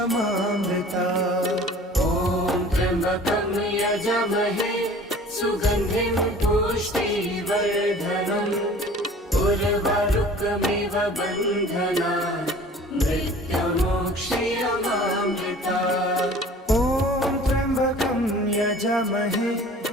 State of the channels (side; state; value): both; normal; correlation 0.46